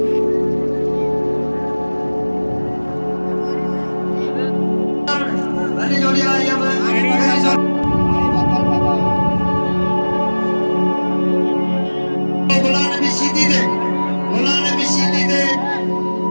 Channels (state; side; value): inverted; both; correlation -1.00